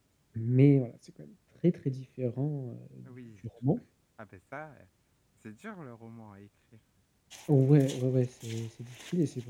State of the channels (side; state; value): both; identical; correlation 1.00